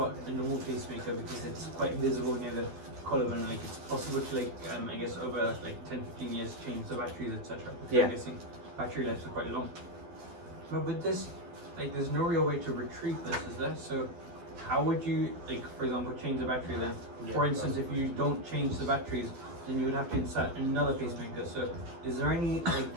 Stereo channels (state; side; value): late; left; 12 ms